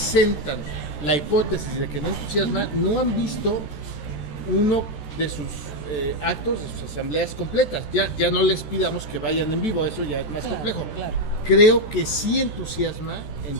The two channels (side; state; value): right; late; 13 ms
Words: la hipótesis de que no entusiasma no han visto uno de sus actos, de sus asambleas completas. Ya no les pidamos que vayan en vivo, eso ya es más complejo. Claro. Creo que sí entusiasma